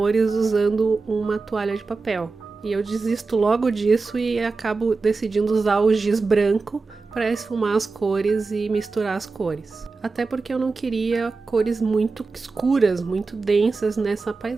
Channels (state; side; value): quieter; left; 4.1 dB